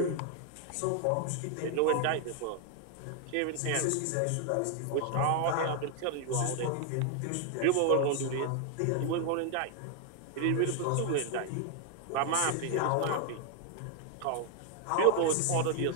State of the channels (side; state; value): both; different; correlation 0.01